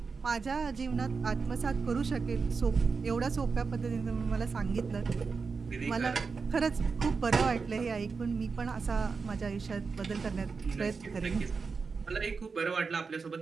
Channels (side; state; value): left; quieter; 4.9 dB